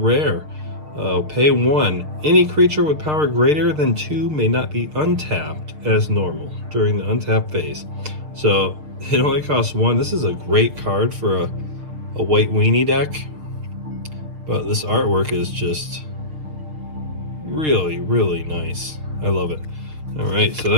Pay 1. Any creature with power greater than 2 may not be untapped as normal during the untap phase. So it only costs 1. This is a great card for a white weenie deck. But this artwork is just really, really nice. I love it. All right, so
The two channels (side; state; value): left; late; 6.6 ms